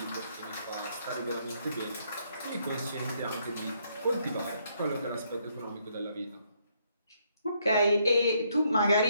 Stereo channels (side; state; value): both; inverted; correlation -0.72